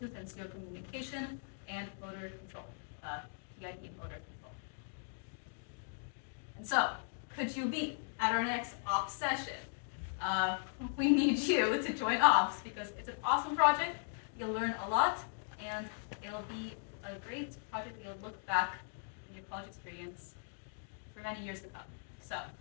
and serial communication and motor control, PID motor control. And so, could you be at our next ops session? We need you to join ops because it's an awesome project. You'll learn a lot, and it'll be a great project that you'll look back in your college experience for many years to come. So,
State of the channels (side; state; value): right; silent; digital silence